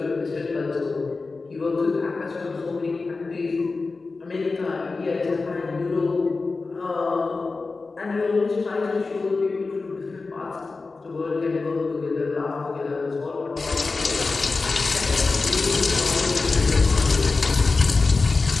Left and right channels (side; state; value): right; quieter; 3.9 dB